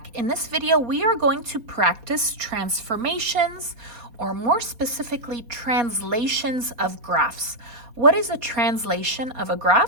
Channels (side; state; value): left; late; 4.2 ms